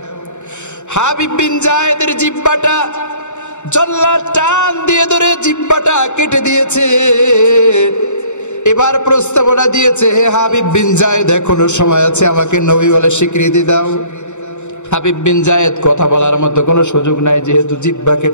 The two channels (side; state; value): right; late; 0.84 ms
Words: হাবিব বিন জায়েদের জিহ্বাটা জল্লাদ টান দিয়ে ধরে জিহ্বাটা কেটে দিয়েছে। এবার প্রস্তাবনা দিয়েছে, হে হাবিব বিন জায়েদ, এখনো সময় আছে, আমাকে নবী বলে স্বীকৃতি দাও। হাবিব বিন জায়েদ কথা বলার মতো কোনো সুযোগ নাই, যেহেতু জিহ্বা